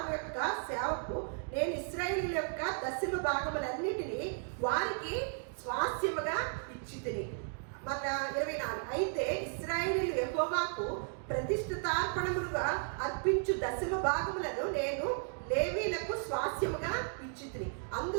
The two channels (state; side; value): silent; left; 55 dB below the other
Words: యొక్క సేవకు నేను ఇశ్రాయేలు యొక్క దశమ భాగములన్నిటినీ వారికి స్వాస్థ్యముగా ఇచ్చితిని. మన 24. అయితే ఇశ్రాయేలీయులు యెహోవాకు ప్రతిష్ఠితార్పణములుగా అర్పించు దశమ భాగములను నేను లేవీలకు స్వాస్థ్యముగా ఇచ్చితిని.